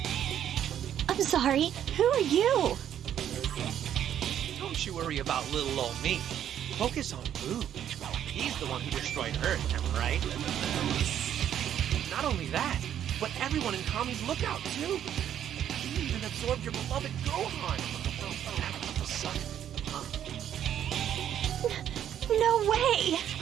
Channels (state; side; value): quieter; left; 10.2 dB